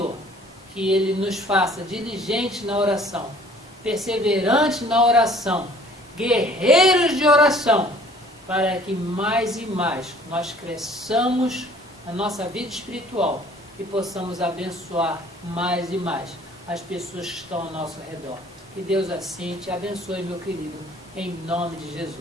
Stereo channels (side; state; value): both; normal; correlation 0.54